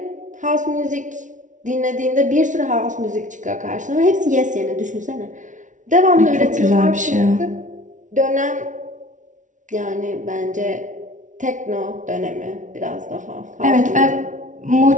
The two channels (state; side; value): late; left; 0.37 ms